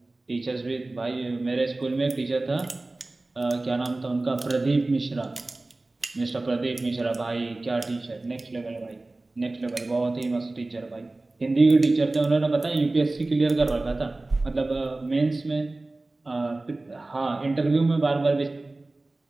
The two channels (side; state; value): left; quieter; 3.0 dB